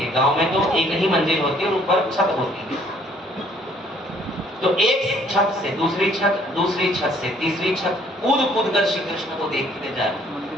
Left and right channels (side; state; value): both; normal; correlation 0.61